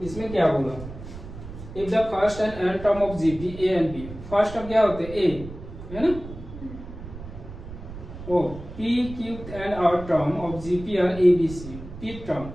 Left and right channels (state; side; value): noise; right; rumble, 13 dB below the sound